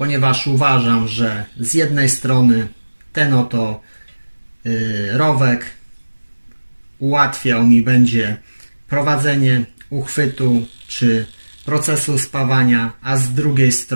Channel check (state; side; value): inverted; both; correlation -1.00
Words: uważam, że z jednej strony ten oto rowek ułatwiał mi będzie prowadzenie uchwytu czy procesu spawania, a z drugiej